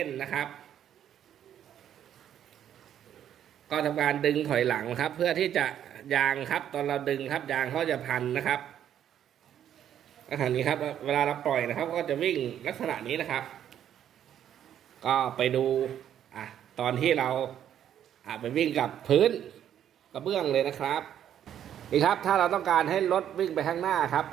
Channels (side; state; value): left; quieter; 10.1 dB